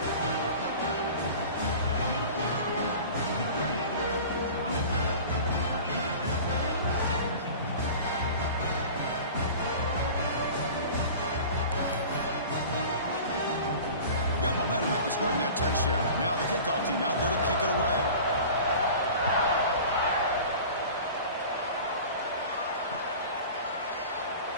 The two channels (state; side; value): inverted; both; correlation -0.39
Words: Got momentum after scoring that touchdown. Now the kickoff team out there to kick it away.